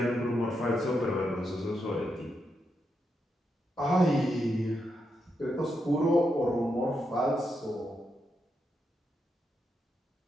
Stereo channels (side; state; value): both; normal; correlation 0.83